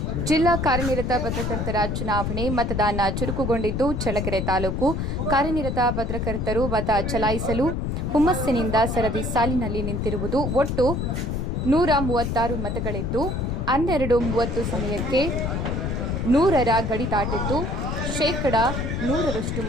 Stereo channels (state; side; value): noise; left; rumble, 1 dB below the sound